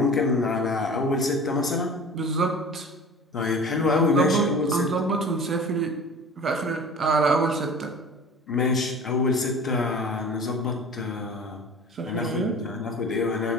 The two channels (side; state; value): both; normal; correlation 0.40